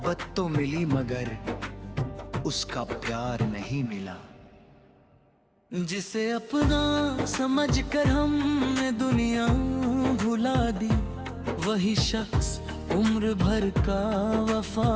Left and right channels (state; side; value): identical; both; correlation 1.00